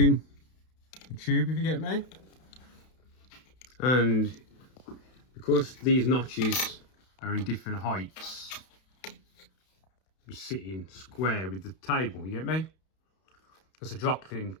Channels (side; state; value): right; late; 32 ms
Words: the tube, if you get me. And because these notches are in different heights, we're sitting square with the table, you get me? Because the drop thing